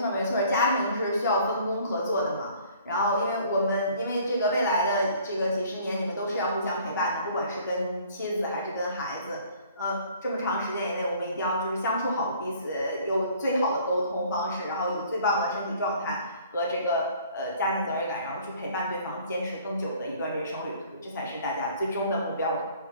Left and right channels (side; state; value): both; inverted; correlation -0.55